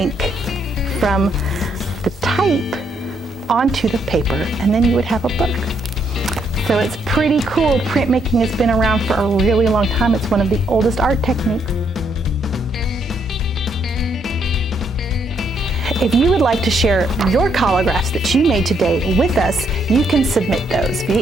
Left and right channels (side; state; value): both; normal; correlation 0.73